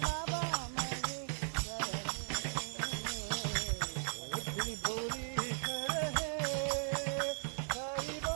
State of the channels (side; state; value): left; silent; 53 dB below the other